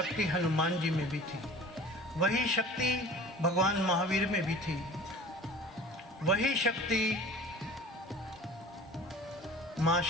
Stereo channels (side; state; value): both; normal; correlation 0.43